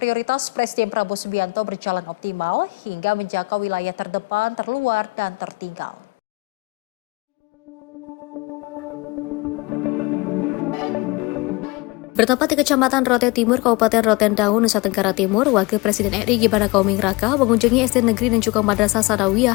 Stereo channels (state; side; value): quieter; right; 24.2 dB